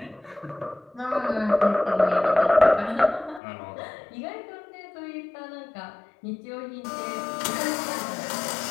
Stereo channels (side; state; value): right; drops out; at 3.4 s